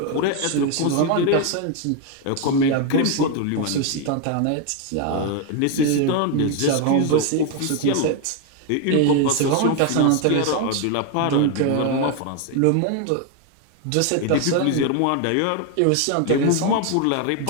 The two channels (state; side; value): different; both; correlation 0.01